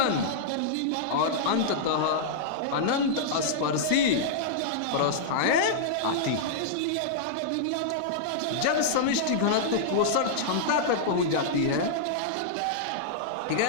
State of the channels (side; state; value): both; different; correlation -0.02